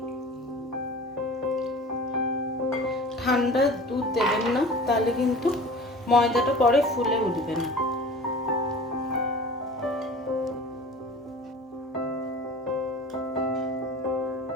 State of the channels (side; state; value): both; normal; correlation 0.41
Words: ঠান্ডা দুধ দেবেন না, তাহলে কিন্তু ময়দাটা পরে ফুলে উঠবে না।